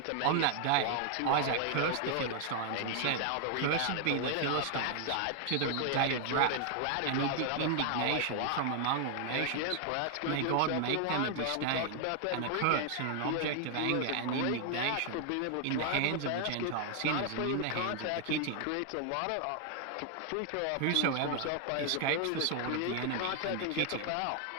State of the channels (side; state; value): both; different; correlation 0.00